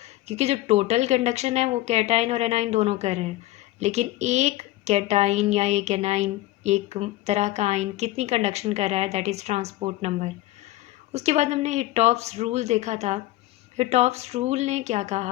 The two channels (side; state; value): right; quieter; 16.8 dB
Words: क्योंकि जो टोटल कंडक्शन है वो कैटाइन और एनाइन दोनों कर रहे हैं, लेकिन एक कैटाइन या एक एनाइन, एक तरह का आइन कितनी कंडक्शन कर रहा है, दैट इज़ ट्रांसपोर्ट नंबर। उसके बाद हमने हिटॉफ्स रूल देखा था। हिटॉफ्स रूल ने क्या